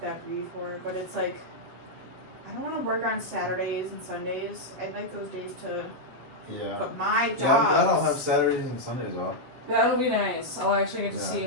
before, but it's like I don't want to work on Saturdays and Sundays. I'd like those days to. Yeah. But my job. Yeah, I'm glad I'll have Saturdays and Sundays off. That'll be nice. I'll actually get to see you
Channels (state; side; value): late; left; 8.1 ms